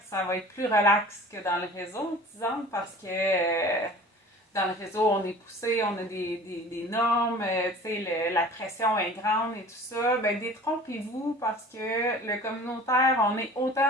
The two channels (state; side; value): normal; both; correlation 0.44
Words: ça va être plus relax que dans le réseau, disons, parce que dans le réseau, on est poussé, on a des normes, la pression est grande et tout ça. Détrompez-vous parce que le communautaire, on est